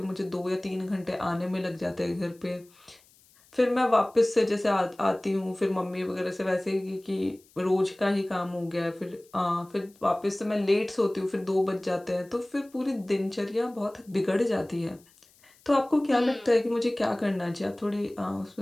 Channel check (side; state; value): left; noise; hiss, 29 dB below the sound